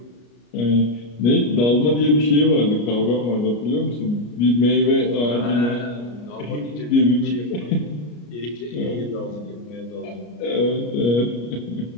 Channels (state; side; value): late; right; 33 ms